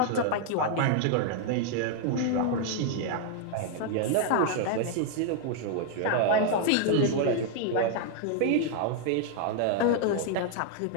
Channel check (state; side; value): different; both; correlation 0.00